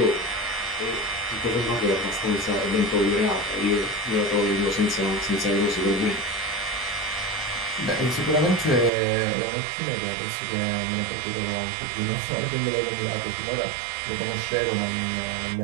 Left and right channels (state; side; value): drops out; left; at 8.9 s